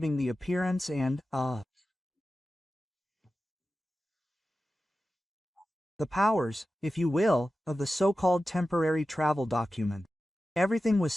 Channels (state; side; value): normal; both; correlation 0.93